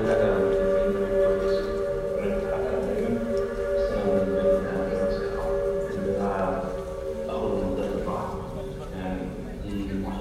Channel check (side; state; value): both; identical; correlation 1.00